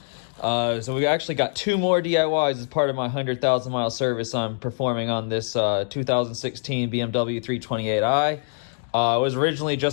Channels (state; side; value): silent; right; digital silence